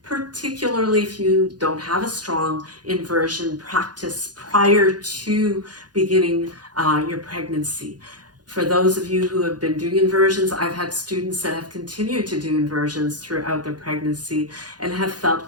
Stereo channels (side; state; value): left; late; 0.69 ms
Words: particularly if you don't have a strong inversion practice prior to beginning your pregnancy. For those of you who have been doing inversions, I've had students that have continued to do inversions throughout their pregnancy and have